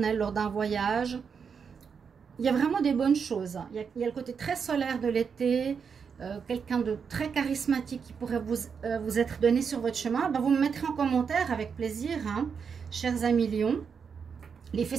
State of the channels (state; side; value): quieter; left; 6.3 dB